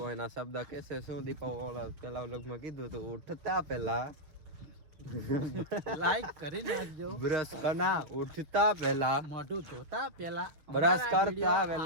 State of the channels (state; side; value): late; left; 6.6 ms